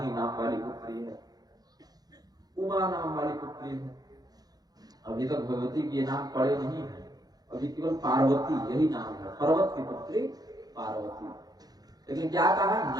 नाम वाली पुत्री है, उमा नाम वाली पुत्री है, अभी तक भगवती के नाम पड़े नहीं है, अभी केवल पार्वती यही नाम है, पर्वत की पुत्री पार्वती। लेकिन क्या कहा,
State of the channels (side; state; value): left; late; 0.19 ms